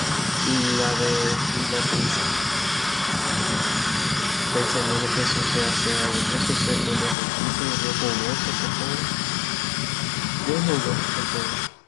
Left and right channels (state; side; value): drops out; right; at 7.2 s